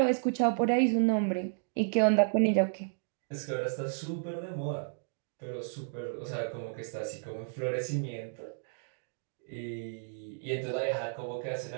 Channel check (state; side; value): silent; left; digital silence